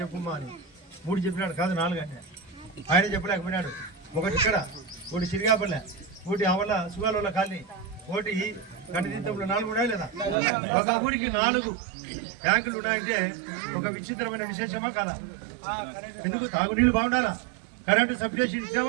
అని. 3 చెప్పినాడు, కాదు 4 అంటే ఆయన చెప్పలేకపోయినాడు. ఒకటి ఇక్కడ, ఒకటి సిరిగాపల్లె, ఒకటి ఆవల సుగాల కాలనీ, ఒకటి కటితీర్థంలో 4 ఉన్నాయా లేదా? ఒక ఊరికి 4 ట్యాంకులు ఉన్నాయంటే ఒక విచిత్రమైన విశేషమా కాదా? ఎందుకు? తాగునీళ్ళు బాగుండాలా, కరెంటు సబ్స్టేషన్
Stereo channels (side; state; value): left; drops out; at 10.4 s